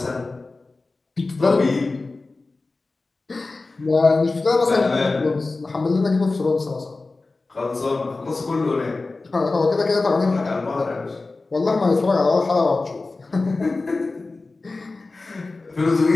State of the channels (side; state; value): right; quieter; 3.5 dB